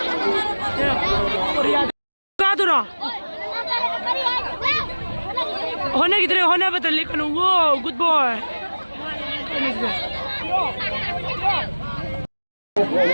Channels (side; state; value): both; inverted; correlation -1.00